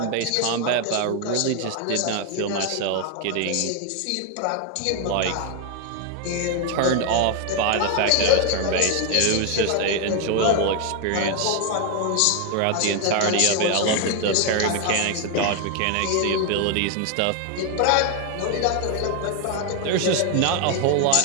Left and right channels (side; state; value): both; different; correlation 0.01